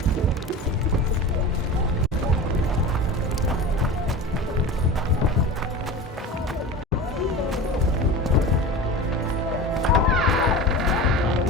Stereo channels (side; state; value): both; normal; correlation 0.32